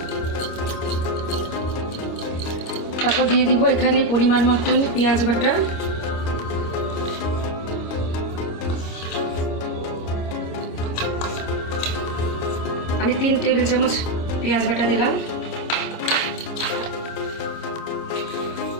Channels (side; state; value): right; late; 25 ms